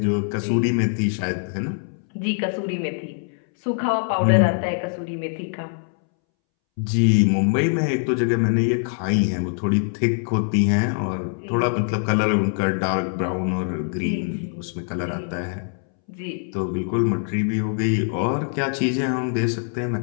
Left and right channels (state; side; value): silent; right; 63 dB below the other